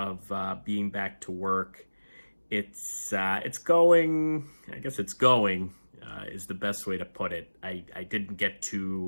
being back to work. It's going. I guess it's going is the best way to put it. I didn't get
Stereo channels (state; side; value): inverted; both; correlation -1.00